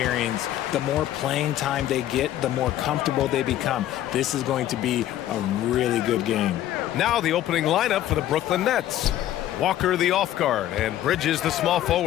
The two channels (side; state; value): right; quieter; 12.8 dB